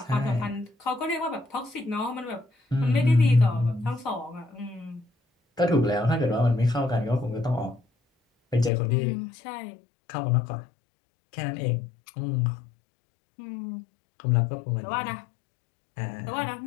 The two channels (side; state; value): right; drops out; at 8.7 s